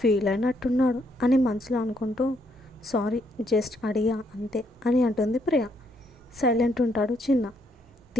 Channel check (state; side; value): normal; both; correlation 0.73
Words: అయినట్టున్నాడు అని మనసులో అనుకుంటూ సారీ జస్ట్ అడిగా అంతే అని అంటుంది ప్రియ. సైలెంట్ ఉంటాడు చిన్న.